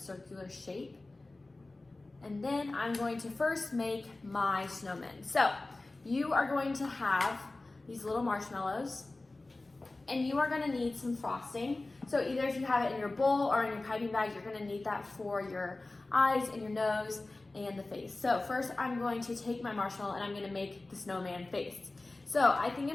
shape. And then I'm going to first make my snowmen. So you are going to have these little marshmallows, and you are gonna need some frosting. So either if you have it in your bowl or in your piping bag, you're gonna need that for your eyes and your nose and the face. So first I'm going to take my marshmallow and I'm gonna make the snowman face. So I think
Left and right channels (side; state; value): right; quieter; 3.1 dB